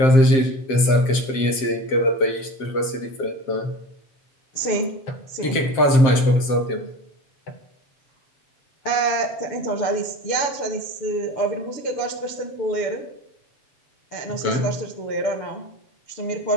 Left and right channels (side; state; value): right; late; 7.5 ms